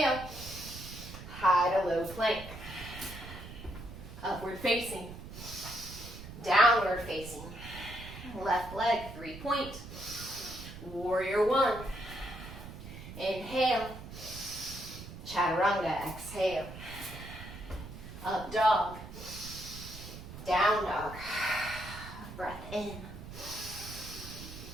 High to low plank. Upward facing. Downward facing. Left leg, 3-point. Warrior one. Inhale. Chaturanga, exhale. Up dog. Down dog. Breath in.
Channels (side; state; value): right; noise; rumble, 12 dB below the sound